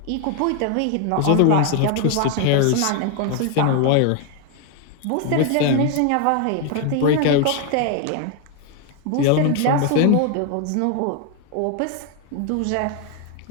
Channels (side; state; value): both; different; correlation 0.01